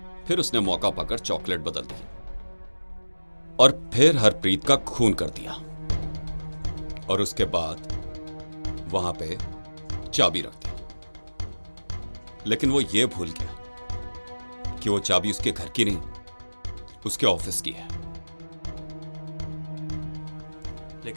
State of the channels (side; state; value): both; inverted; correlation -1.00